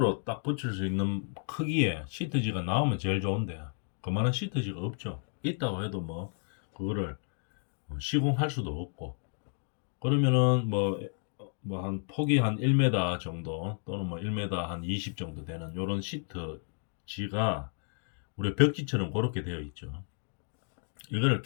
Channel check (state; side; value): silent; right; 57 dB below the other